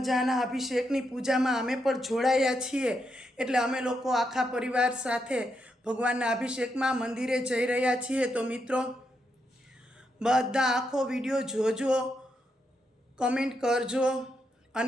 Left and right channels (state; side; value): normal; both; correlation 0.82